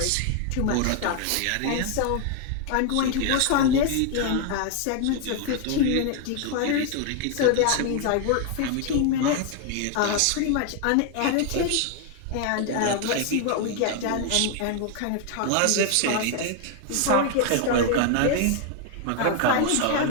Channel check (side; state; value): both; different; correlation 0.00